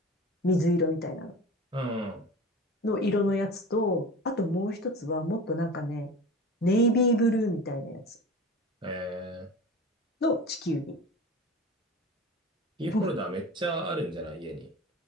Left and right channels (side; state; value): both; normal; correlation 0.34